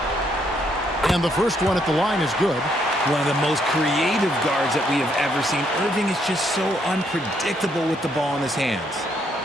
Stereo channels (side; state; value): both; normal; correlation 0.72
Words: And the first one at the line is good. One of the most creative guards that we have ever seen. Irving is just so unpredictable with the ball in his hands.